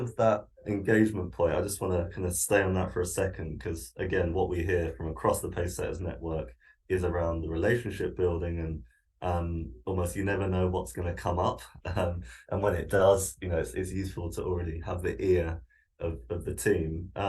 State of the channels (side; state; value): both; identical; correlation 1.00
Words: that engagement point, I just want to kind of stay on that for a second, because again, what we hear from across the Pacesetters network is around the relationship building, and almost you never know what's going to come up. And when it does, it's useful to already have the ear of the team.